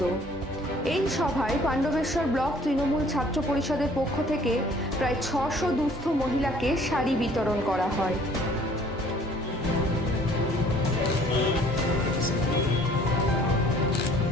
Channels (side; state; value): both; normal; correlation 0.56